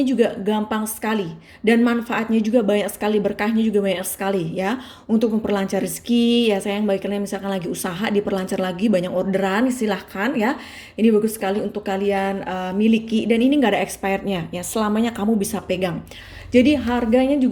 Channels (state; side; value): identical; both; correlation 1.00